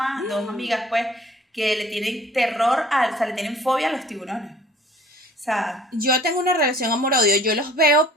dos amigas, pues, que le tienen terror, o sea, le tienen fobia a los tiburones. O sea, Yo tengo una relación amor-odio, yo los veo,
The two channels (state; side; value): normal; both; correlation 0.51